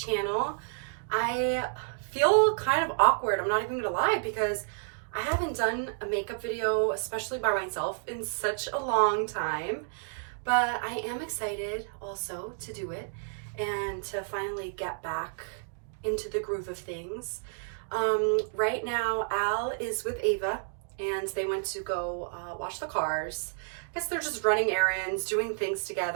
I feel kind of awkward, I'm not even gonna lie, because I haven't done a makeup video, especially by myself, in such a long time. But I am excited also to do it and to finally get back into the groove of things. Right now, Al is with Ava and they went to go wash the cars. I guess they're just running errands, doing things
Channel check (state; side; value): silent; left; digital silence